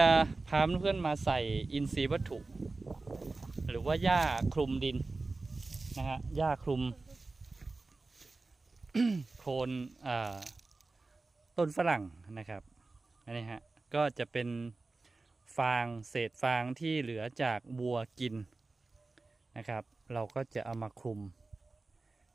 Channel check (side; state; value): left; quieter; 3.5 dB